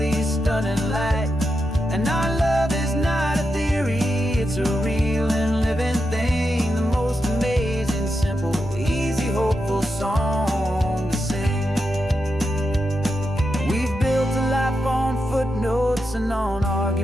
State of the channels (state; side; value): normal; both; correlation 0.86